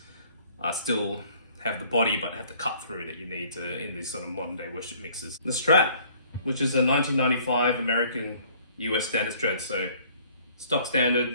still have the body but have the cut through that you need in these sort of modern day worship mixes. The Strat, which is a 1995 American US standard Strat, so stock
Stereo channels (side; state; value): both; inverted; correlation -0.57